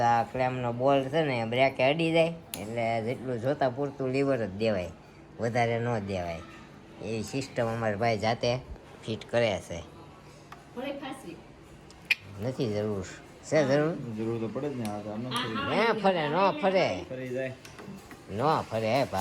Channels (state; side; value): identical; both; correlation 1.00